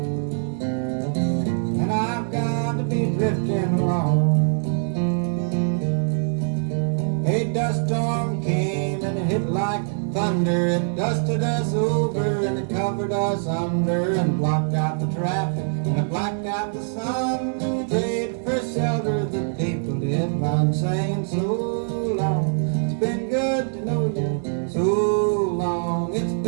and I've got to be drifting along. A dust storm came and it hit like thunder. It dusted us over and it covered us under, and blocked out the traffic and it blacked out the sun. Prayed for shelter, the people did run, saying so long, it's been good to know you. So long, it's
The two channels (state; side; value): silent; left; digital silence